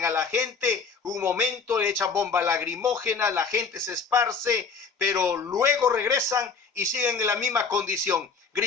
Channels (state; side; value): quieter; right; 5.3 dB